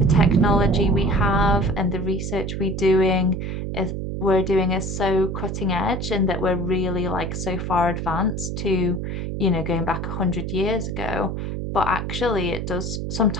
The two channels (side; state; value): right; noise; hum, 4 dB below the sound